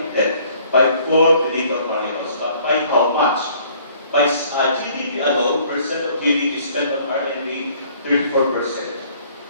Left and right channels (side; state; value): both; inverted; correlation -0.58